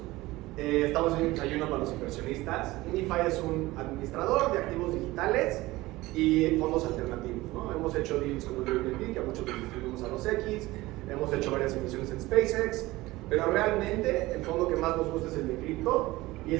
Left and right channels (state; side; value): quieter; left; 19.2 dB